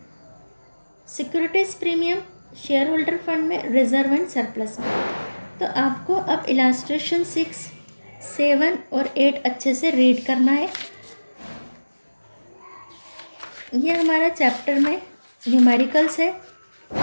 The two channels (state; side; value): inverted; both; correlation -1.00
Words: securities premium share holder fund में, रिजर्व एंड सरप्लस में। तो आपको अब इलास्ट्रेशन 6, 7 और 8 अच्छे से रीड करना है। ये हमारा चैप्टर में न्यूमेरिकल्स है।